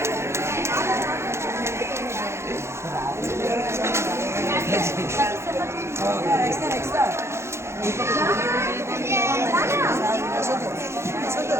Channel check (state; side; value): late; left; 0.13 ms